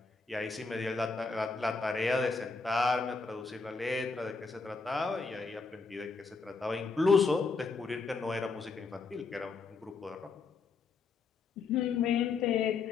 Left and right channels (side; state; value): right; quieter; 4.5 dB